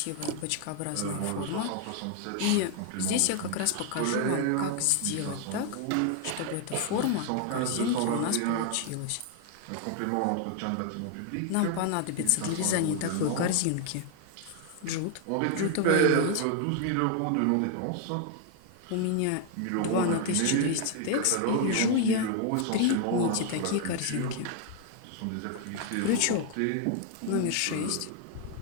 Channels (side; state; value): both; different; correlation 0.00